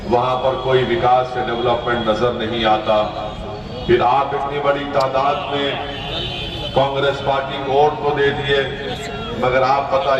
वहाँ पर कोई विकास या डेवलपमेंट नजर नहीं आता। फिर आप इतनी बड़ी तादाद में कांग्रेस पार्टी को वोट तो दे दिए, मगर आप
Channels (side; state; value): both; identical; correlation 1.00